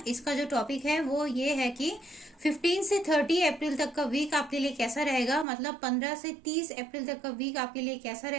इसका जो टॉपिक है वो ये है कि 15 से 30 अप्रैल तक का वीक आपके लिए कैसा रहेगा। मतलब 15 से 30 अप्रैल तक का वीक आपके लिए कैसा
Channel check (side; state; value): left; drops out; at 5.5 s